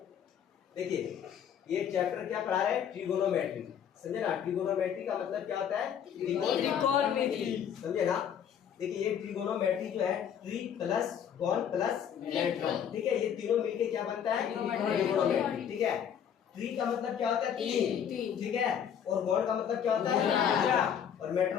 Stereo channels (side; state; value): right; quieter; 8.6 dB